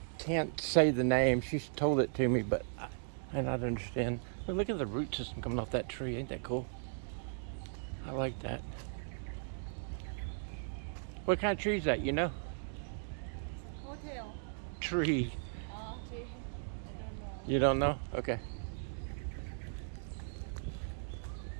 can't say the name. She's told it to me, but I don't understand. But look at the root system coming off that tree. Ain't that cool? I like that. What kind of tree is that, you know? Hotel. Tree. Tree. I don't know. You don't know? Okay.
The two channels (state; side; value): silent; left; digital silence